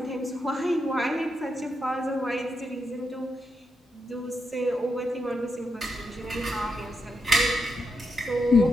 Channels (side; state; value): both; normal; correlation 0.83